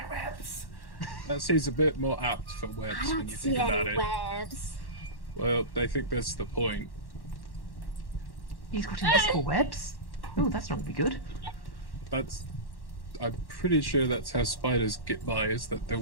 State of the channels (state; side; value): late; right; 1.1 ms